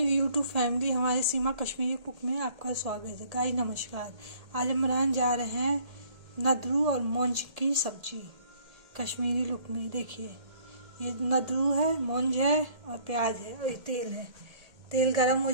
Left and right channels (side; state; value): left; late; 1.8 ms